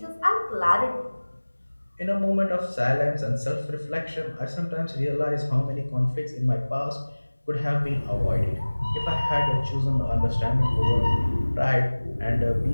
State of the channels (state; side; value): inverted; both; correlation -1.00